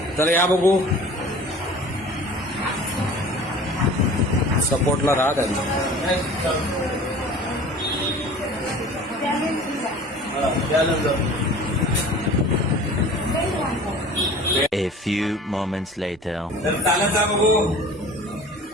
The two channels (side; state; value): both; normal; correlation 0.43